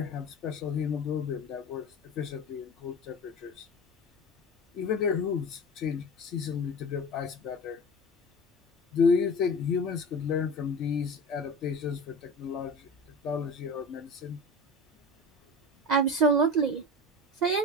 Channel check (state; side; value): normal; both; correlation 0.32